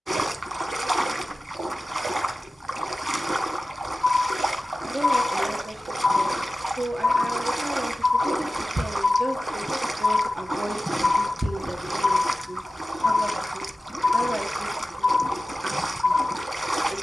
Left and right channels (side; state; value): both; normal; correlation 0.95